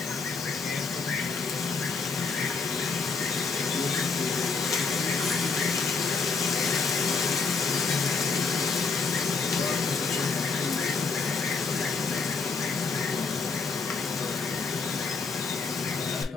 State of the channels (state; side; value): quieter; right; 4.7 dB